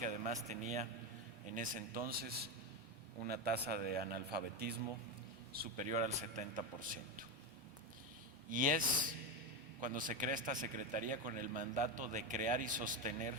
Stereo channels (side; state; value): both; normal; correlation 0.13